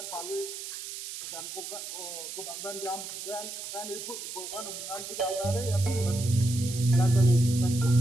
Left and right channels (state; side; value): noise; right; hiss, 8 dB below the sound